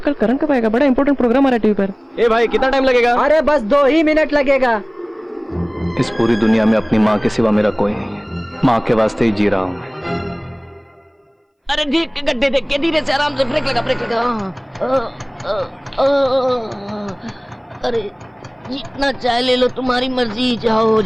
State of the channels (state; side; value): identical; both; correlation 1.00